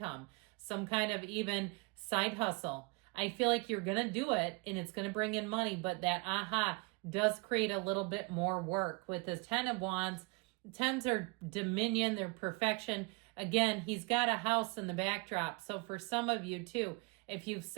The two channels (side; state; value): left; quieter; 28.0 dB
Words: some kind of even side hustle, I feel like you're going to do it and it's going to bring in money, but that aha does create a little bit more work. With the 10 of Wands, 10s are dominion, they're perfection. Again, he's got a house in the backdrop. So for some of you too, if you've